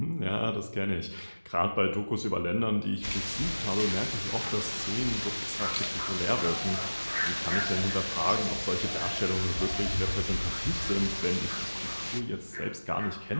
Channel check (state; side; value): inverted; both; correlation -1.00